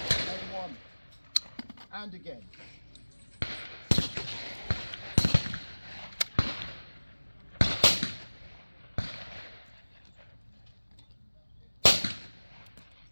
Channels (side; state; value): both; inverted; correlation -1.00